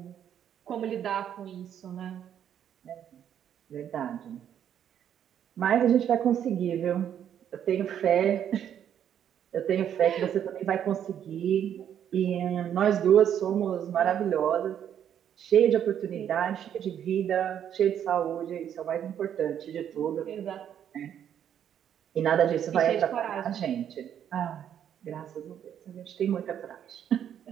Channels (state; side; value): quieter; left; 9.5 dB